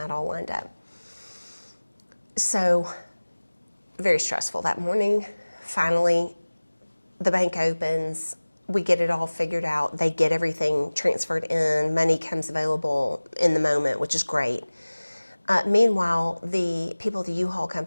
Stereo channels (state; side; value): inverted; both; correlation -1.00